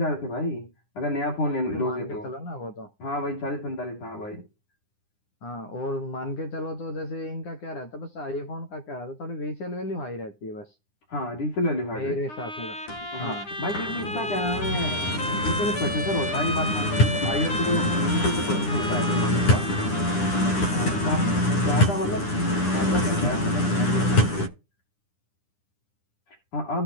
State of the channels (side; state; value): right; late; 9.9 ms